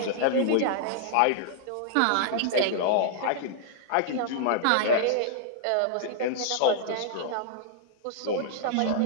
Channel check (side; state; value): both; different; correlation -0.01